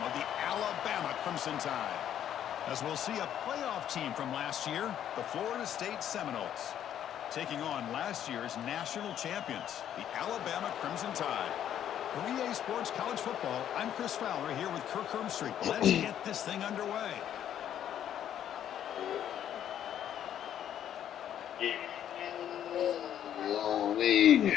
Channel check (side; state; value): right; quieter; 10.3 dB